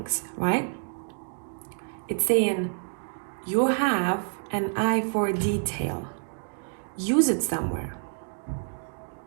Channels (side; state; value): left; silent; digital silence